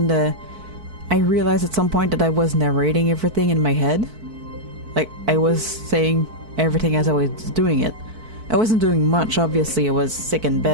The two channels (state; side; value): late; left; 4.5 ms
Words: I realized at some point that I was narrating everything in my head. Like, I was saying everything as I was doing it. I wasn't doing much, obviously, I was sick in